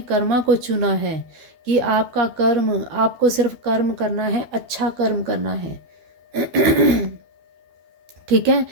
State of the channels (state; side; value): late; left; 12 ms